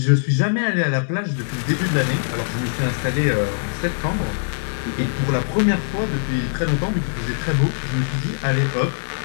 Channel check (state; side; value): silent; right; digital silence